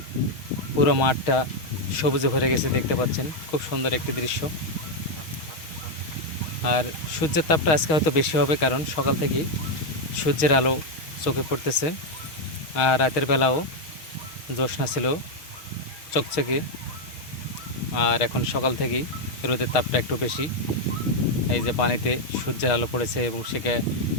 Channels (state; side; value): late; right; 6.3 ms